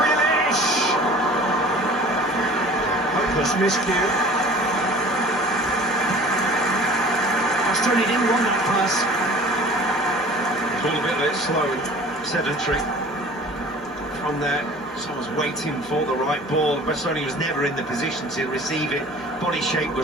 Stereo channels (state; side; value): normal; both; correlation 0.44